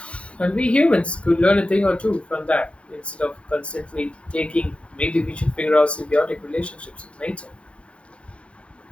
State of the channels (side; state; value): right; late; 0.061 ms